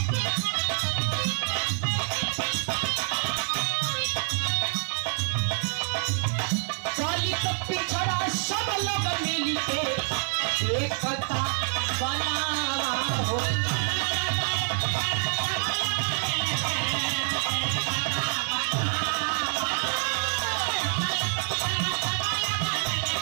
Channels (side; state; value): left; silent; 59 dB below the other